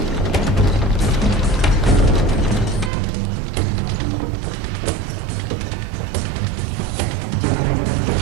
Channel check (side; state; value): left; drops out; at 2.9 s